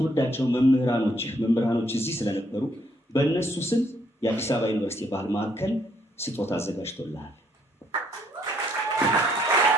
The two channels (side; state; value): both; normal; correlation 0.69